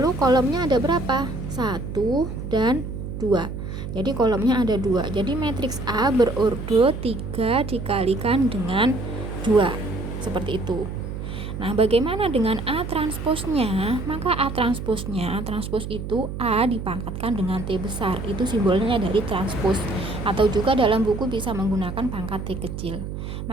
kolomnya ada berapa? 1 dan 2. Jadi kolomnya ada 2. Jadi matriks A berordo 3 dikalikan dengan 2. Seperti itu. Nah, bagaimana dengan A transposnya? Maka A transposnya, transpos itu A dipangkatkan dengan T besar. Itu simbolnya dari transpos. Atau juga dalam buku bisa menggunakan pangkat T kecil.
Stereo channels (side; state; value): right; noise; hum, 7 dB below the sound